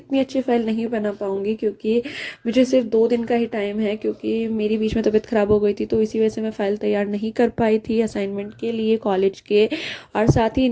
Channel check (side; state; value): both; identical; correlation 1.00